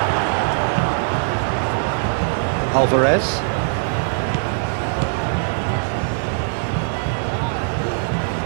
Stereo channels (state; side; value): silent; left; digital silence